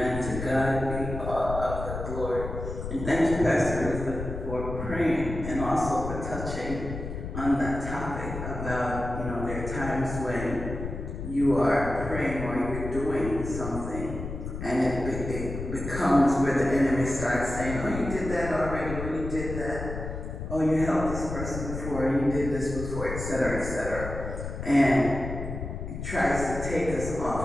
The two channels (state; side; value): noise; left; rumble, 7 dB below the sound